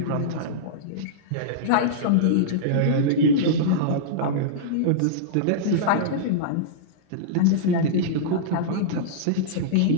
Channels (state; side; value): different; both; correlation -0.03